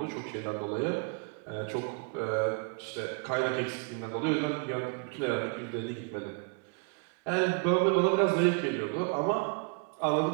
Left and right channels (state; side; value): quieter; left; 37.1 dB